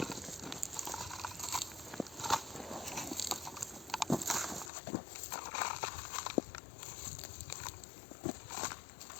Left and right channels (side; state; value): right; drops out; at 4.7 s